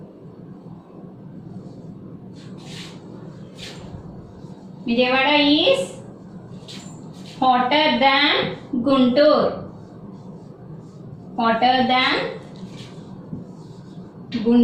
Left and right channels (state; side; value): identical; both; correlation 1.00